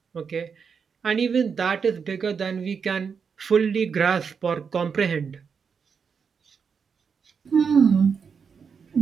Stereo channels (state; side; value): quieter; left; 6.1 dB